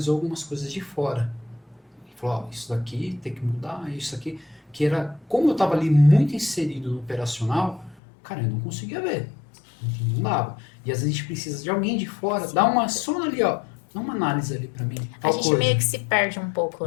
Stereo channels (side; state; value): right; drops out; at 8.0 s